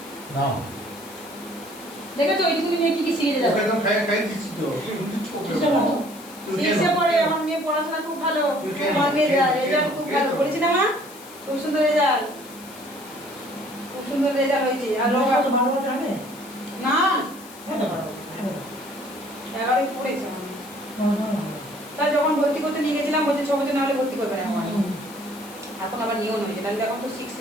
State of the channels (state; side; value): noise; left; hiss, 19 dB below the sound